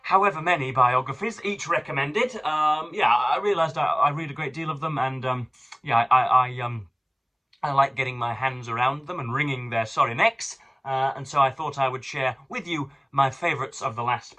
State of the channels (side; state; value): both; identical; correlation 1.00